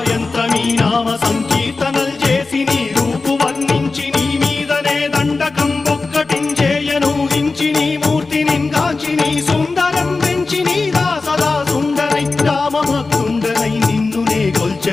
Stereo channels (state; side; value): quieter; right; 3.8 dB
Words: నామ సంకీర్తనల్ చేసి నీ రూపు వర్ణించి నీ మీదనే దండకం ఒక్కటించేయను హించి నీ మూర్తిని గాంచి నీ సుందరం వెంచి నీ దాసదా సుందరై రామభక్తుండనై నిన్నునే